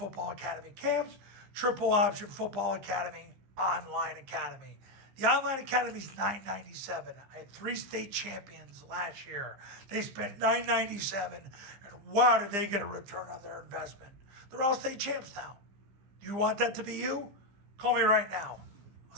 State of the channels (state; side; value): late; left; 15 ms